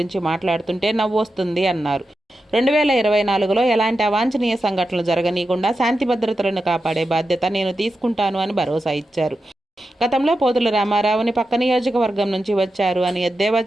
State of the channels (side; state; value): both; normal; correlation 0.90